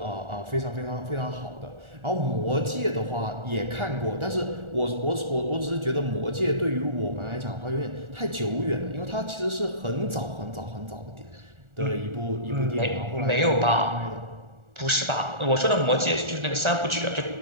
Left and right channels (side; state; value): left; late; 1.4 ms